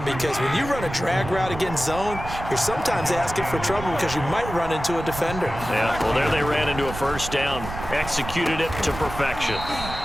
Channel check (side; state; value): right; noise; rumble, 10 dB below the sound